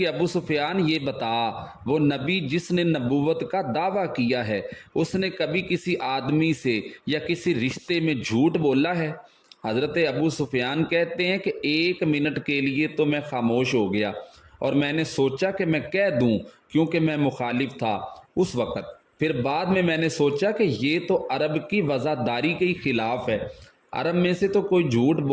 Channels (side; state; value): both; identical; correlation 1.00